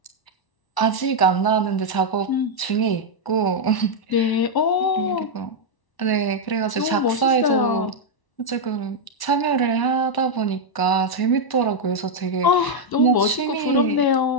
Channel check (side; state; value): right; late; 1.0 ms